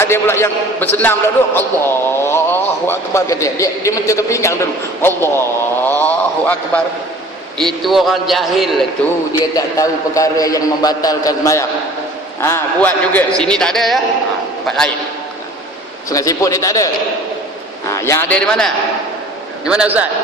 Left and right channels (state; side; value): normal; both; correlation 0.47